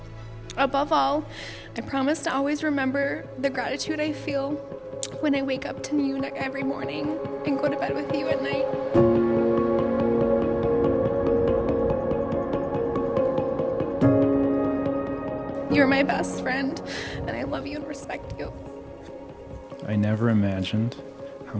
Above all, I promise to always remember the gratitude I feel when I wake up to you every morning and go to bed with you at night. You're my best friend, and I love you and respect you. I never imagined how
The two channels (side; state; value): both; identical; correlation 1.00